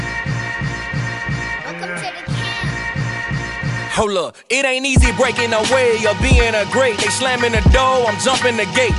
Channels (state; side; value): identical; both; correlation 1.00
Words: Hold up, it ain't easy breaking away or being a great. They slamming the door, I'm jumping the gate.